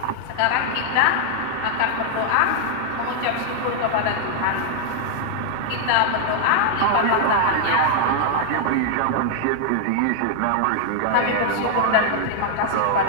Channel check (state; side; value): different; both; correlation 0.00